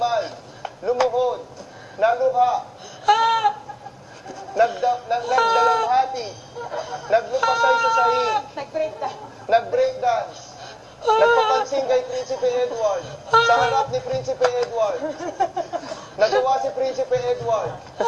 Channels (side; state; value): both; identical; correlation 1.00